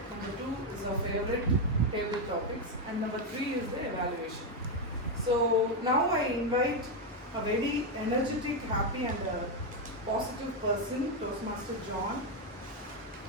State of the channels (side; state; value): both; normal; correlation 0.05